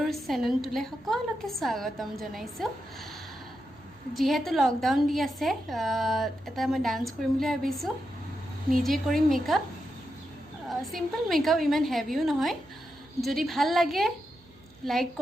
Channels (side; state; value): right; noise; hum, 29 dB below the sound